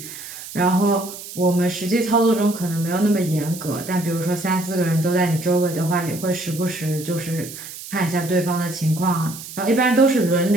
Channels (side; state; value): right; noise; hiss, 12 dB below the sound